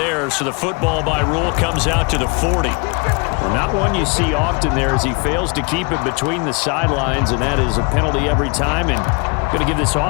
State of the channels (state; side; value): quieter; right; 31.9 dB